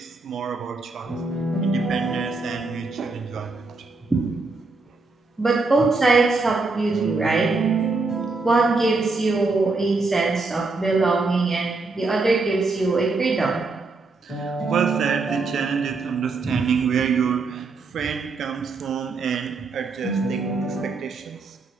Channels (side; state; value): left; quieter; 3.8 dB